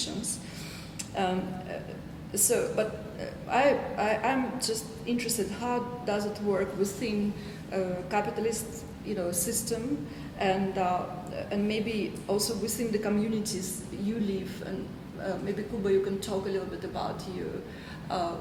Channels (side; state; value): both; identical; correlation 1.00